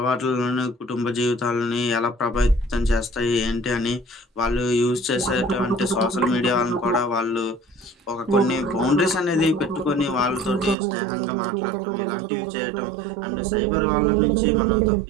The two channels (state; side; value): drops out; left; at 10.8 s